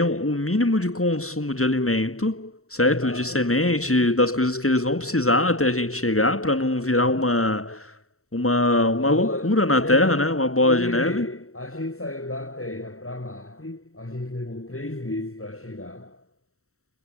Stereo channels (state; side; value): late; right; 0.64 ms